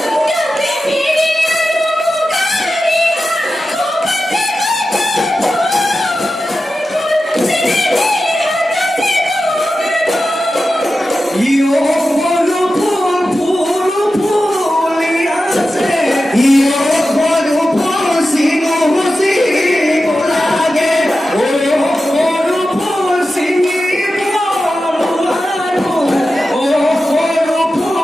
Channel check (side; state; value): both; normal; correlation 0.92